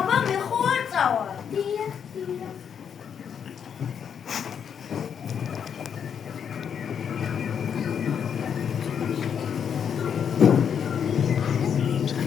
მე ხო არ წავალ. დიახ.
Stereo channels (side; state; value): right; quieter; 7.7 dB